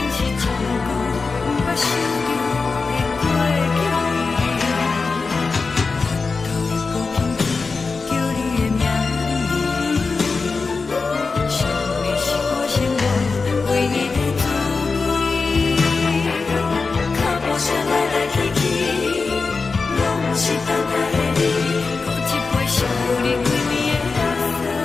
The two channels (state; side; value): quieter; right; 4.4 dB